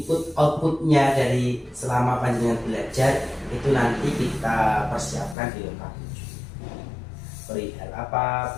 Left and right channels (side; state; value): right; drops out; at 5.4 s